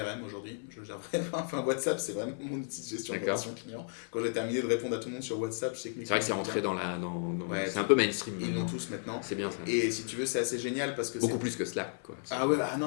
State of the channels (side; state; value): right; silent; 55 dB below the other